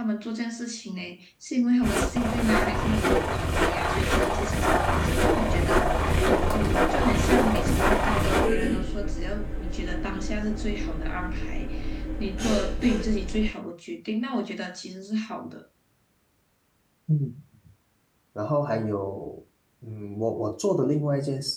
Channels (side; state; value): both; identical; correlation 1.00